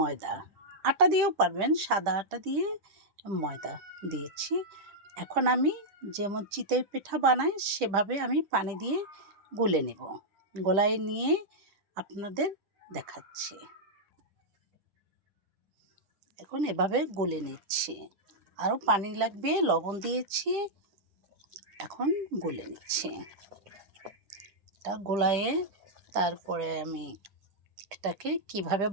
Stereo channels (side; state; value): left; late; 10 ms